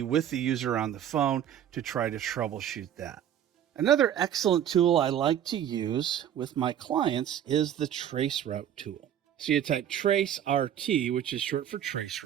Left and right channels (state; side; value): quieter; left; 10.1 dB